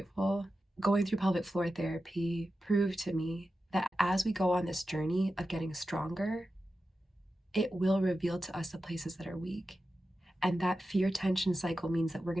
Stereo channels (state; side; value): normal; both; correlation 0.92